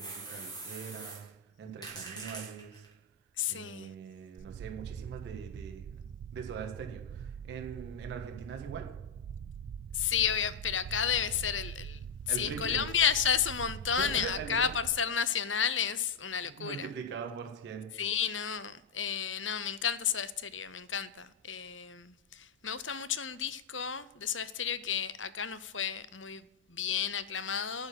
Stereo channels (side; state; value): right; quieter; 5.6 dB